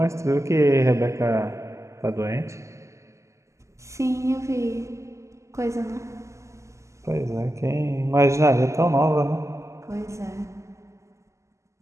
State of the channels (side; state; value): left; late; 0.14 ms